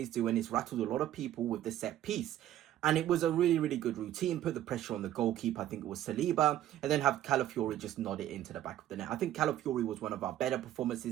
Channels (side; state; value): left; quieter; 12.5 dB